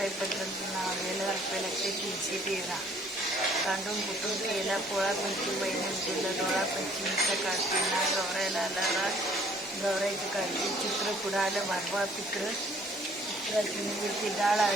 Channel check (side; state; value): both; normal; correlation 0.59